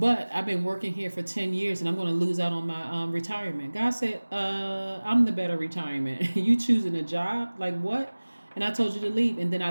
I've been working here for 10 years and I'm going to lose out on my retirement. God said, I'm the better retirement. You choosing a job? Like what? And I told you to leave. And then I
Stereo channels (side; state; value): both; inverted; correlation -1.00